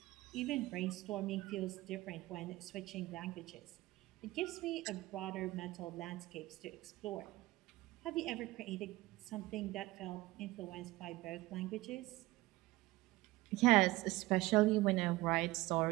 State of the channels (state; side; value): quieter; left; 19.0 dB